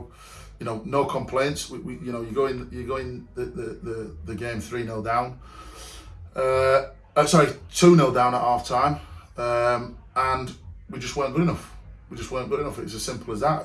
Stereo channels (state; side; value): identical; both; correlation 1.00